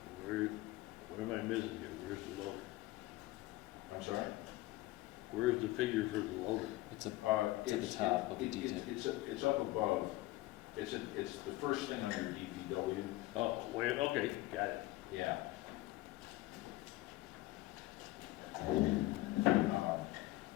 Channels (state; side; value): quieter; right; 18.3 dB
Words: What am I missing here? Where's the loader? I'm sorry? Where's the figure for the loader? It's at the top of the detail. It's up above. It's the first thing under DPW. Oh, wait, okay, got it. Yeah.